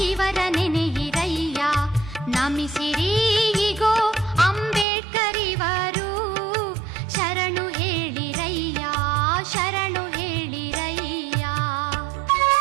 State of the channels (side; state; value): left; drops out; at 4.9 s